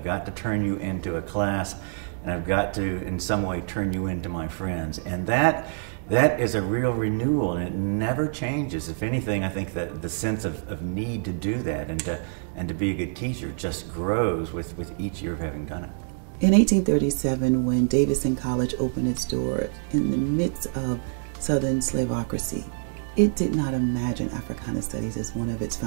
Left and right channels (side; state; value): left; silent; 61 dB below the other